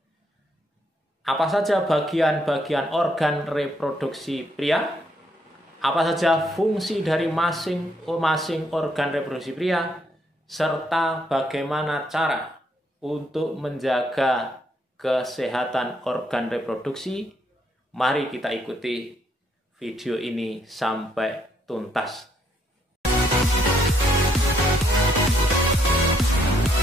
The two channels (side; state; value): both; normal; correlation 0.73